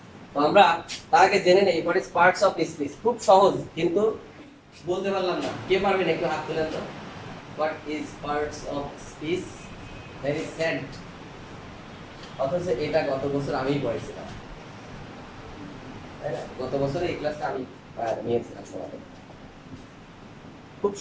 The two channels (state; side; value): identical; both; correlation 1.00